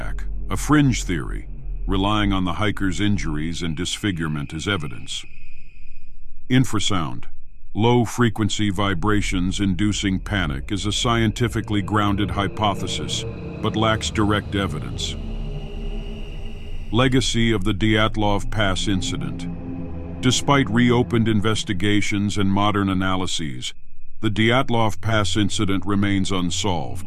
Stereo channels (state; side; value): identical; both; correlation 1.00